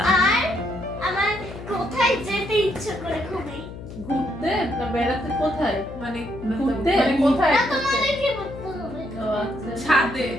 আর আমার কোথায় যেতে ইচ্ছে করে খুবই? ঘুরতে না বেড়াতে? কোথায় মানে ঘুরতে? মানে কোথায়? না, তোমাদেরকে বলতে হবে। ও আচ্ছা। ছাদে।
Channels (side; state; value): left; noise; hum, 12 dB below the sound